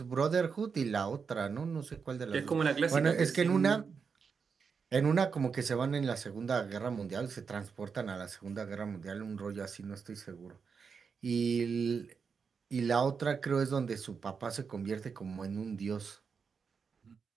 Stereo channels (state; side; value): quieter; left; 5.8 dB